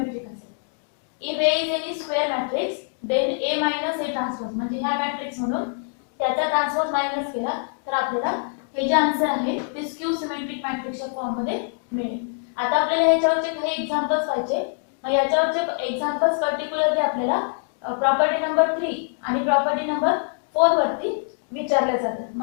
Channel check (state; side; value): silent; right; 62 dB below the other